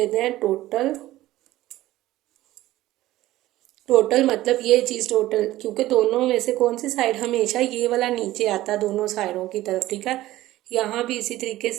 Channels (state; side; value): quieter; left; 15.9 dB